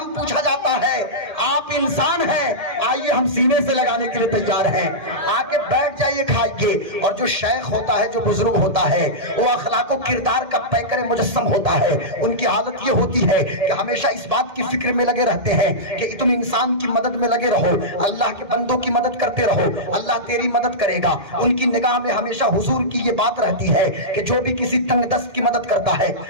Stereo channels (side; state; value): left; late; 1.8 ms